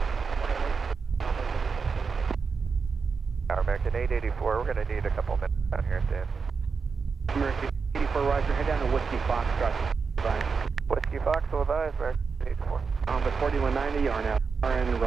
Our American 884, we're going to need a couple minutes down here at the end. American 84, Roger, head down to Whiskey Fox, Scott. Whiskey Fox, will advise, American 84. But 4190, are now RN,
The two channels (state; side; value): quieter; left; 5.2 dB